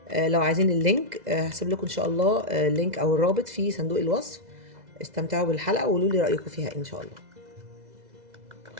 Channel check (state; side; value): late; left; 2.0 ms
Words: لو عايزين اللينك هسيب لكم ان شاء الله اللينك او الرابط في صندوق الوصف. استمتعوا بالحلقه وقولوا لي رايكم فيها ان شاء الله.